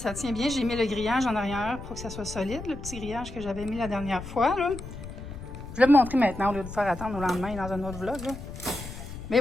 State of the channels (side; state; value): left; noise; rumble, 11 dB below the sound